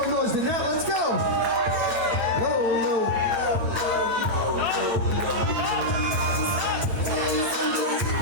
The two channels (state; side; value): late; left; 8.8 ms